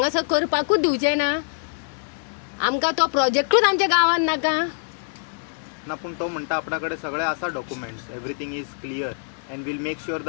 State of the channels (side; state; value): right; silent; digital silence